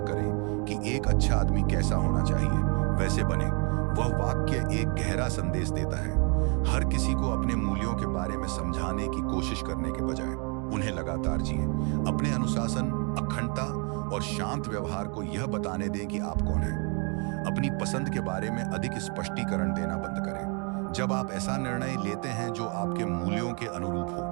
करें कि एक अच्छा आदमी कैसा होना चाहिए, वैसे बने। वह वाक्य एक गहरा संदेश देता है। हर किसी को अपने मूल्यों के बारे में समझाने की कोशिश करने के बजाय उन्हें लगातार जिए। अपने अनुशासन, अखंडता और शांत व्यवहार को यह बताने दें कि आप कौन हैं। अपनी पसंद के बारे में अधिक स्पष्टीकरण देना बंद करें। जब आप ऐसा निर्णय लेते हैं जो आपके मूल्यों के अनुरूप हो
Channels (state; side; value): quieter; left; 35.0 dB